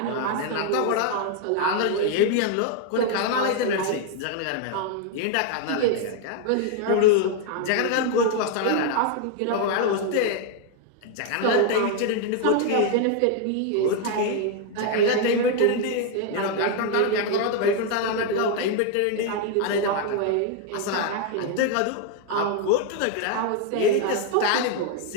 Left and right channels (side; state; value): both; different; correlation 0.01